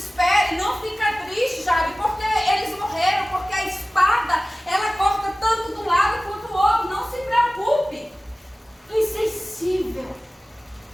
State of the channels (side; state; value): both; normal; correlation 0.97